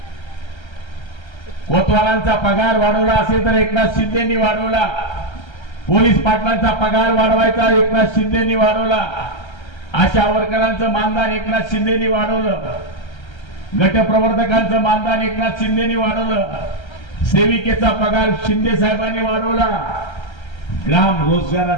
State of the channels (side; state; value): right; late; 1.3 ms